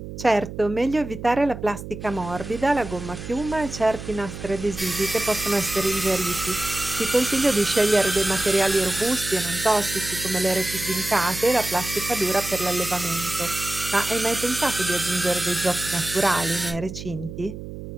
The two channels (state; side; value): noise; right; hum, 10 dB below the sound